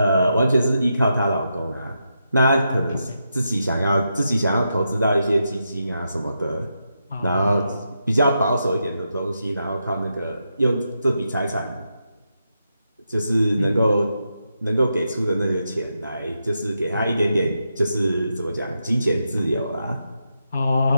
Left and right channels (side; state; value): both; inverted; correlation -0.85